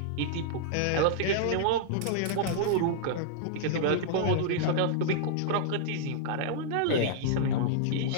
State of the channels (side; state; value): both; different; correlation -0.01